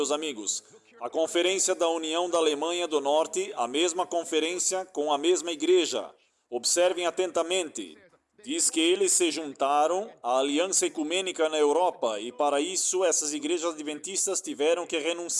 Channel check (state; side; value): identical; both; correlation 1.00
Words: amigos. A Conferência da União da Alemanha do Norte, a mesma conferência com a mesma igreja. Observem atentamente. Diz que eles se juntaram à Aliança Ecumênica na Europa e para isso essas igrejas adventistas tiveram que